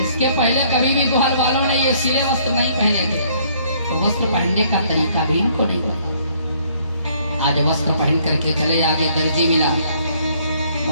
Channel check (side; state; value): both; inverted; correlation -0.63